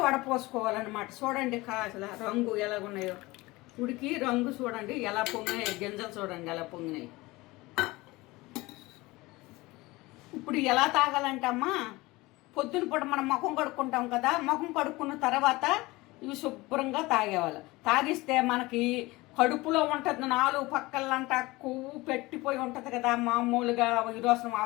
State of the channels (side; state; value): right; quieter; 21.2 dB